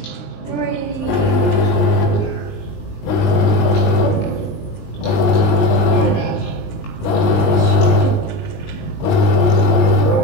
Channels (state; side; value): late; right; 20 ms